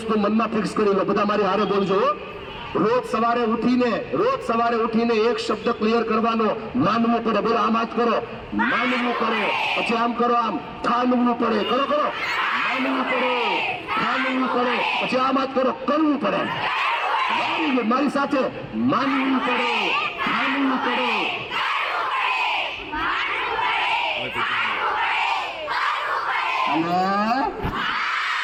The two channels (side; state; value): both; identical; correlation 1.00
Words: મનમાં ફિક્સ કરી લો. બધા મારી હારે બોલજો. રોજ સવારે ઉઠીને એક શબ્દ ક્લિયર કરવાનો, માનવું પડે. બોલો આમ હાથ કરો, માનવું પડે. પછી આમ કરો, આમ ઠાનવું પડે. કરો માનવું પડે, ઠાનવું પડે. પછી આમ હાથ કરો, કરવું પડે. મારી સાથે માનવું પડે, ઠાનવું પડે.